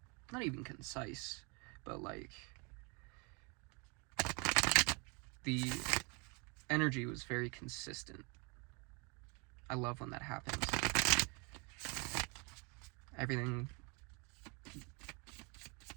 Not even concise, but, like, the energy was very consistent. I love when that happens. Everything,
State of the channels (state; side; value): quieter; left; 31.9 dB